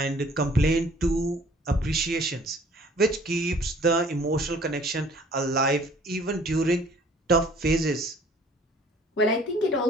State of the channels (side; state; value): both; normal; correlation 0.54